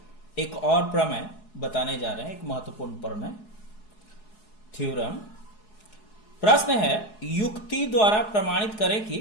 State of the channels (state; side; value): late; right; 4.7 ms